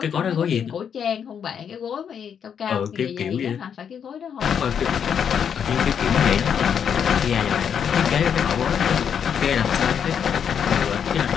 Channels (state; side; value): quieter; right; 7.8 dB